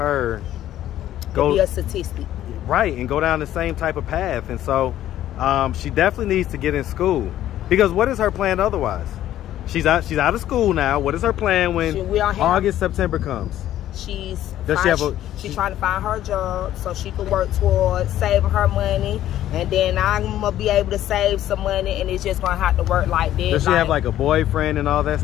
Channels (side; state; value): right; quieter; 12.6 dB